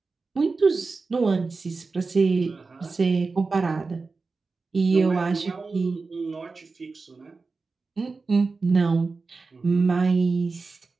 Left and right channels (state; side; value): quieter; left; 4.1 dB